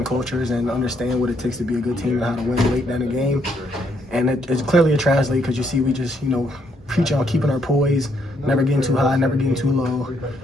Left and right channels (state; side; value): normal; both; correlation 0.72